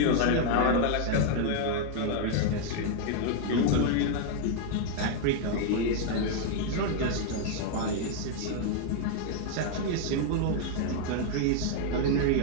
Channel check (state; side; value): different; both; correlation 0.00